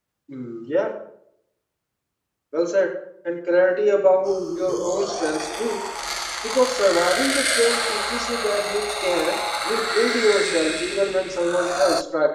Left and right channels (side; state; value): both; identical; correlation 1.00